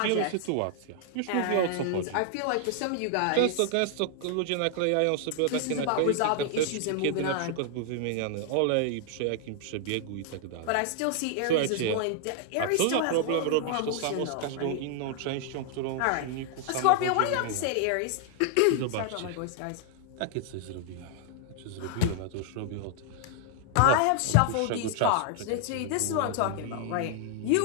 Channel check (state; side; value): different; both; correlation 0.00